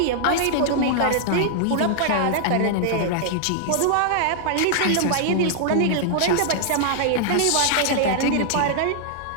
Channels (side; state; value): both; different; correlation -0.01